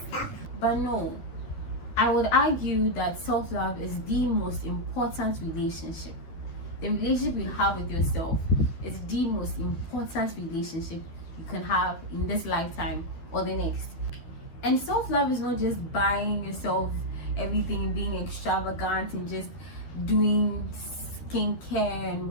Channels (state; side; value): late; right; 12 ms